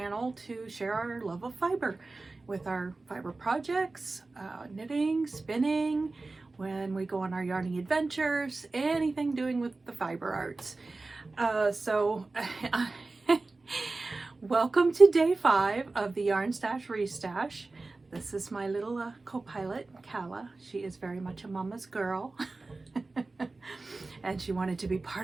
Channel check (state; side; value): quieter; left; 3.5 dB